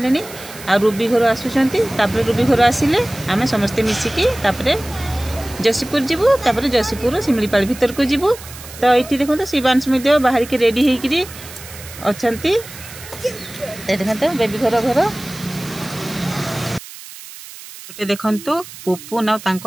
आ रूबी घर आसुचंती। तापर रूबी घर आसिले आमे समस्ते मिसिकी तापर जसीपुर जीवु। तापर जसीपुर सिमलीपाल भीतर को जीवु। तो एठी देखो तो शिवांश मध्ये बाहरी के रेडी हेकी अछंती। देखो बेबी घर गोटे देखु पुपुन आ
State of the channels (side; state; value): right; noise; hiss, 15 dB below the sound